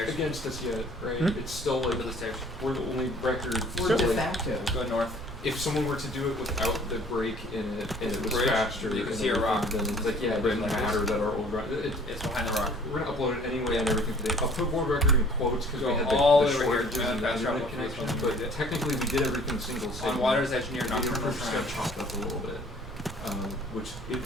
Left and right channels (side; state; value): right; noise; rumble, 12 dB below the sound